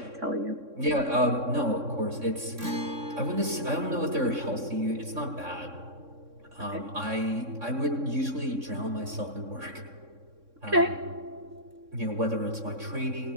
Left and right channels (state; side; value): late; left; 3.6 ms